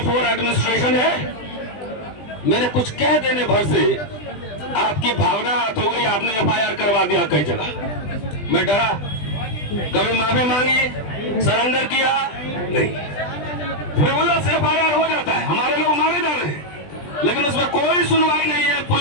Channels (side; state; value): right; late; 20 ms